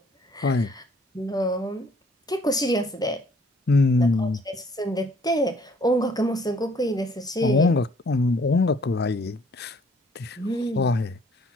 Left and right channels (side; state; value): both; normal; correlation 0.60